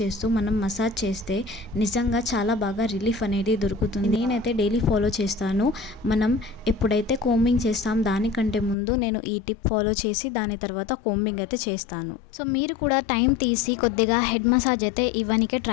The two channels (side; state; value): right; drops out; at 8.8 s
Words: చేస్తూ మనం మసాజ్ చేస్తే నిజంగా చాలా బాగా రిలీఫ్ అనేది దొరుకుతుంది. నేనైతే డైలీ ఫాలో చేస్తాను. మనం ఎప్పుడైతే కోంబింగ్ చేస్తాం దానికంటే ముందు నేను ఈ టిప్ ఫాలో చేసి దాని తర్వాత కోంబింగ్ అయితే చేస్తాను. సో మీరు కూడా టైం తీసి కొద్దిగా హెడ్ మసాజ్ అయితే ఇవ్వనికే